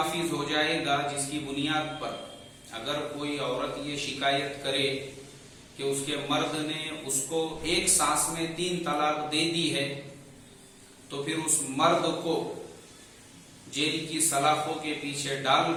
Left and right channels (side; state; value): both; identical; correlation 1.00